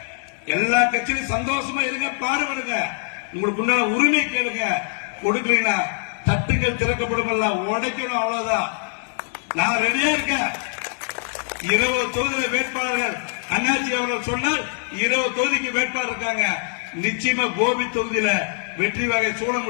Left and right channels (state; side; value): silent; right; 63 dB below the other